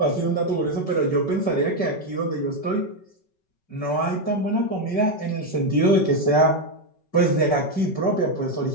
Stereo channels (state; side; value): late; right; 5.3 ms